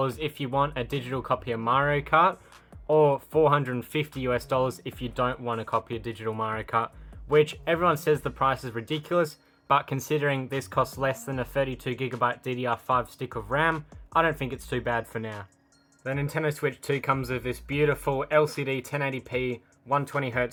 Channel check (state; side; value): identical; both; correlation 1.00